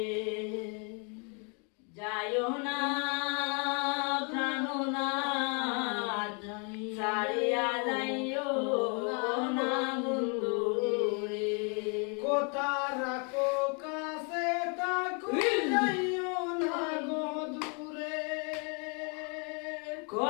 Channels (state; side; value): quieter; right; 36.3 dB